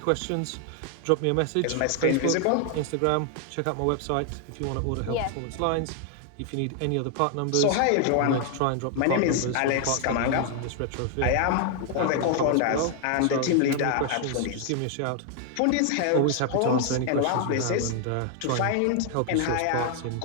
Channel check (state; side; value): different; both; correlation 0.00